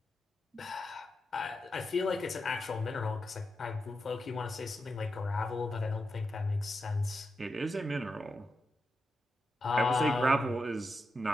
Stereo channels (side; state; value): both; normal; correlation 0.87